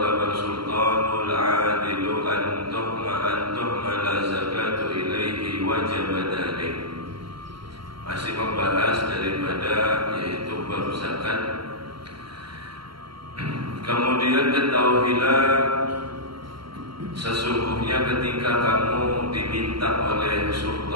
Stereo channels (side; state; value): left; late; 0.73 ms